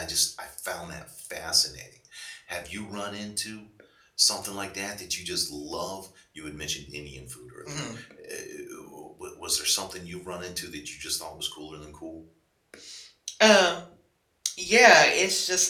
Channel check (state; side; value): identical; both; correlation 1.00